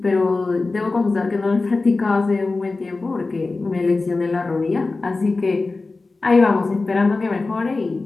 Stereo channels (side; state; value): right; quieter; 3.6 dB